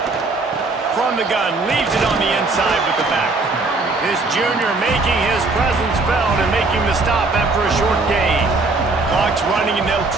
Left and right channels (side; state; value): left; quieter; 3.5 dB